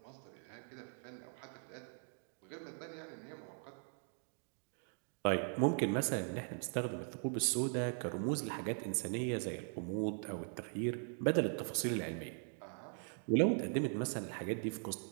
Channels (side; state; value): left; silent; 51 dB below the other